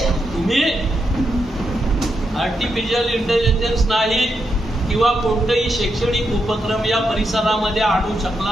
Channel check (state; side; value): normal; both; correlation 0.83